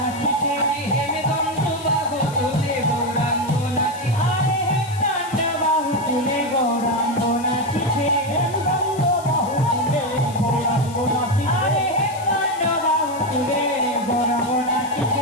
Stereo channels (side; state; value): left; noise; hiss, 18 dB below the sound